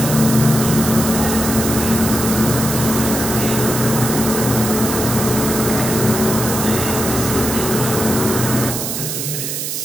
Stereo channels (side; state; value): right; noise; hiss, 4 dB below the sound